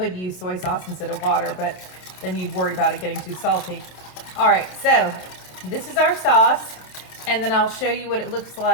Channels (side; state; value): right; late; 27 ms